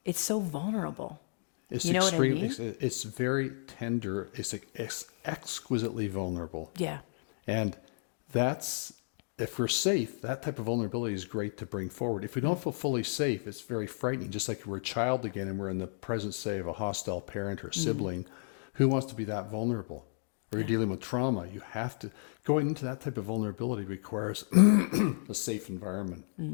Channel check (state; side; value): silent; right; digital silence